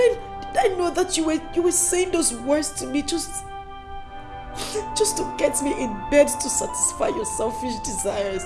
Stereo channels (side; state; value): both; identical; correlation 1.00